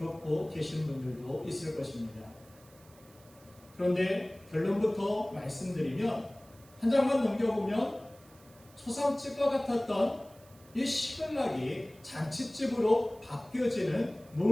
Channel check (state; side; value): noise; right; hiss, 26 dB below the sound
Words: 계신 분들도 있을 것입니다. 그런데 결론부터 말씀드리면 한 장만 넘겨보면 초상집과 같았던 이 시글락이 잔치집으로 바뀌어지는